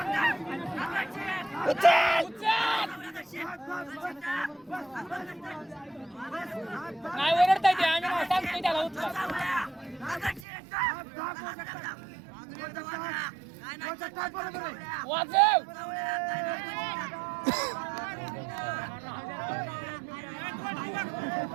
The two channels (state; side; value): drops out; left; at 10.5 s